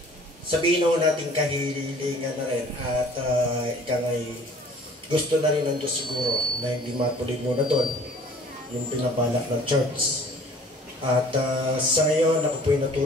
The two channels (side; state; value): both; normal; correlation 0.51